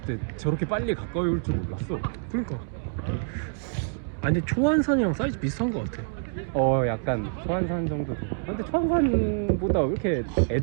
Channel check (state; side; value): silent; left; digital silence